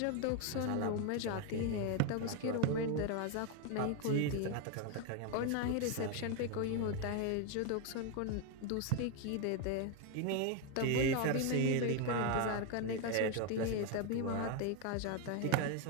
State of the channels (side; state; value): both; different; correlation 0.01